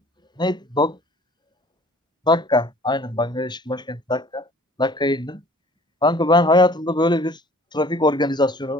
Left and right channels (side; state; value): both; normal; correlation 0.50